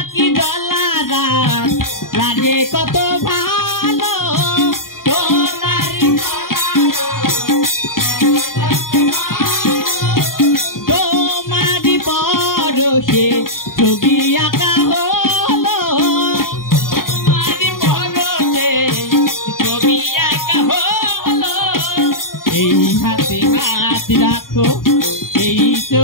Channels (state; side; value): late; right; 0.91 ms